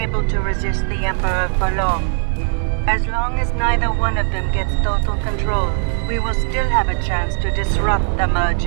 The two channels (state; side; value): silent; left; 56 dB below the other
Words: able to resist the Emperor for long. As long as neither one of them gets total control, we will still have a chance to disrupt the